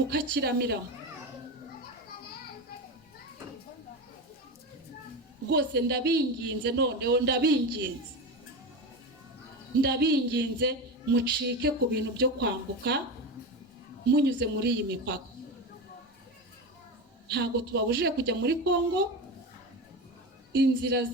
Rwose ndabinginze, noneho ndabinginze mucike ku bintu byo kwambuka munyuze muri iyi mipaka. Ntago tubabujije kujya muri Kongo, inzira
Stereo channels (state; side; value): normal; both; correlation 0.22